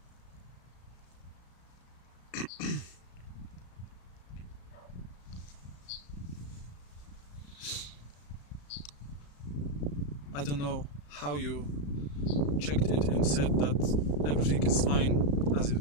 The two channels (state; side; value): late; right; 35 ms